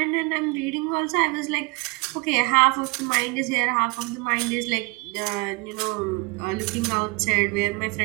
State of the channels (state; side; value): quieter; left; 27.9 dB